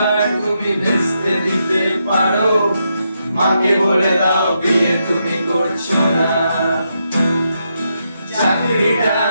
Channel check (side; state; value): both; inverted; correlation -0.82